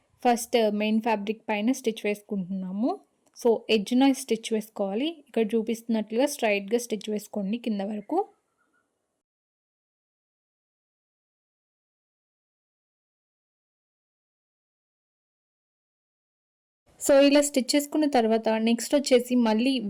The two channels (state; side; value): identical; both; correlation 1.00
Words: ఫస్ట్ మెయిన్ ఫ్యాబ్రిక్ పైన స్టిచ్ వేసుకుంటున్నాము. సో ఎడ్జ్న స్టిచ్ వేసుకోవాలి. ఇక్కడ చూపిస్తున్నట్లుగా స్ట్రైట్గా స్టిచ్ వేసుకోండి కింద వరకు. సో ఇలా స్టిచ్ చేసుకున్న తర్వాత నెక్స్ట్ వచ్చేసి మళ్ళీ